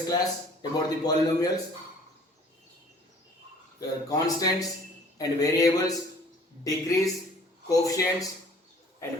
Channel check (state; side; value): normal; both; correlation 0.53